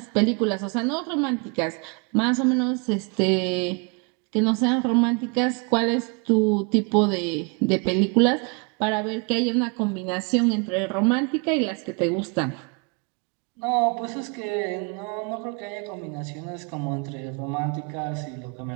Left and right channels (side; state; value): left; quieter; 33.1 dB